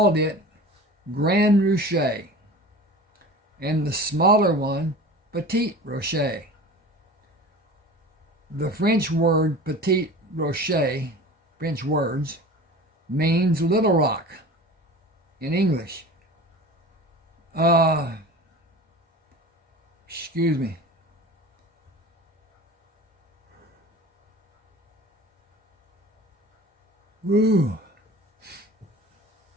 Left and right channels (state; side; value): normal; both; correlation 0.37